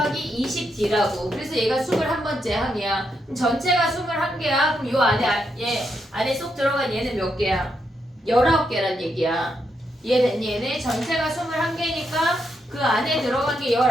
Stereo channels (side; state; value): both; normal; correlation 0.81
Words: 20D라고. 그래서 얘가 21번째 항이야. 그럼 전체가 21개야. 그럼 요 안에 얘 안에 쏙 들어간 얘는 몇 개야? 19개란 얘기야. 이해됐니? 얘네 전체가 21개니까 그 안에 들어간 게